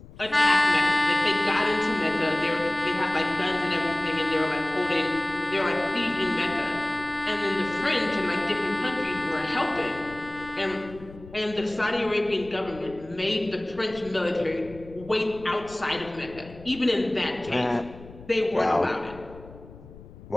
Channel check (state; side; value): noise; left; rumble, 19 dB below the sound